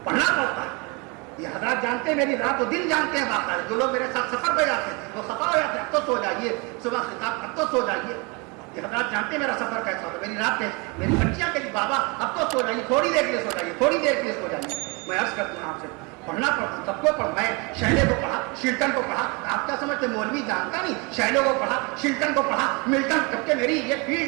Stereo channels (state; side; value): quieter; left; 29.2 dB